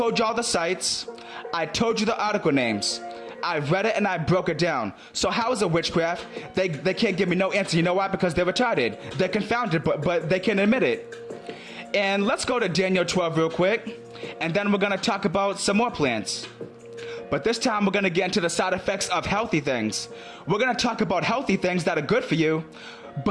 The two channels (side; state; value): both; identical; correlation 1.00